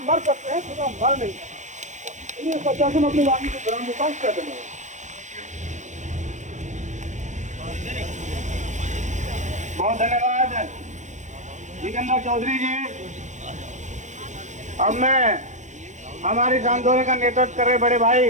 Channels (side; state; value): left; late; 0.35 ms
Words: मर सकते हैं, खुदा मर नहीं सकता। ये सच्चा से अपनी वाणी को ग्राम विकास कर देना। बहुत धन्यवाद जितेंद्र चौधरी जी। अब मैं हमारी इस आंदोलन का नेतृत्व कर रहे बड़े